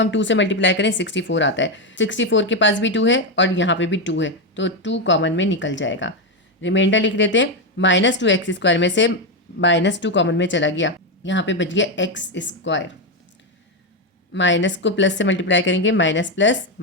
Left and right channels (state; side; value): normal; both; correlation 0.07